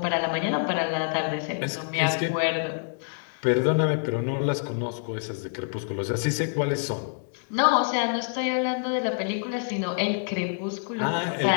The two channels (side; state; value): right; silent; digital silence